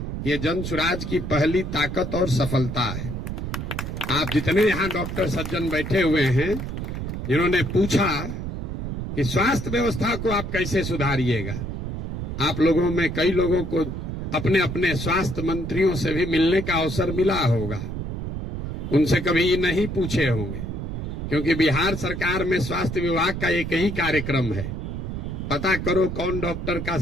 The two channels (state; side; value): noise; right; rumble, 5 dB below the sound